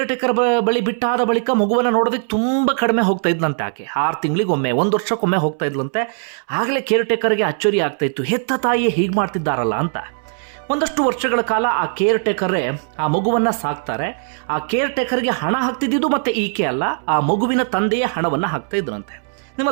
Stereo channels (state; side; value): silent; left; 64 dB below the other